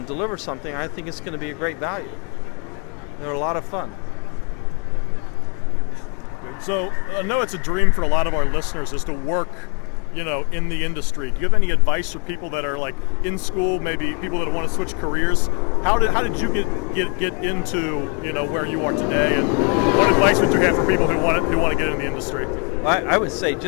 deliver something, I think it's going to be a great value. They're a lot of fun. So I know it's a dream for a lot of our listeners is to work, in the industry. Do you have any advice for people that are like in school, maybe people that want to switch careers? How did you get into where you are today, and what advice would you have for people who want to get in the industry? I would say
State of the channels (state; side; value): quieter; right; 36.0 dB